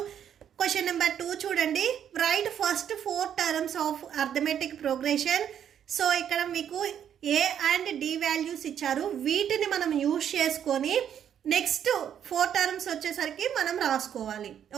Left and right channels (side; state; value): left; quieter; 9.3 dB